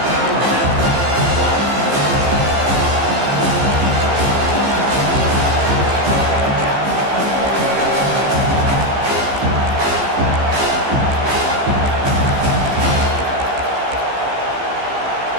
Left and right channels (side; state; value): left; late; 15 ms